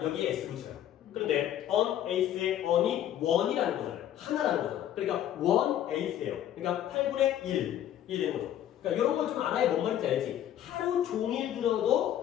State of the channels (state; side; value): quieter; right; 11.3 dB